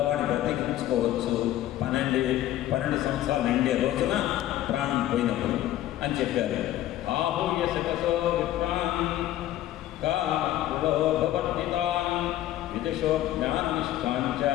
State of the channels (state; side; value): quieter; right; 13.6 dB